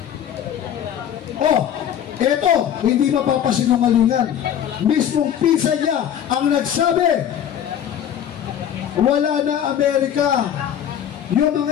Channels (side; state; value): right; quieter; 9.7 dB